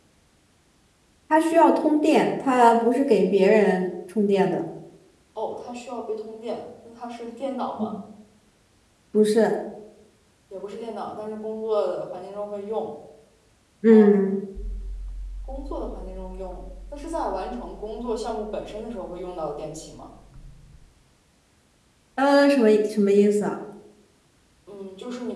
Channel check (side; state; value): both; identical; correlation 1.00